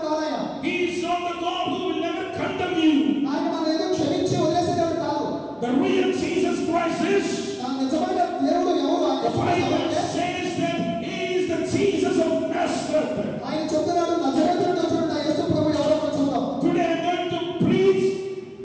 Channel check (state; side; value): identical; both; correlation 1.00